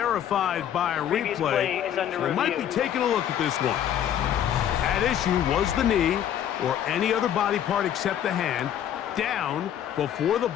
by a replay. So they might be taking a look at this one. At issue was the knee or any other body part except the hand down before the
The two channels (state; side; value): quieter; right; 10.2 dB